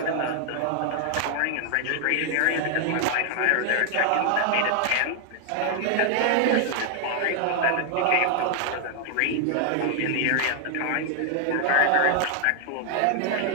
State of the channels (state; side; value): different; both; correlation 0.00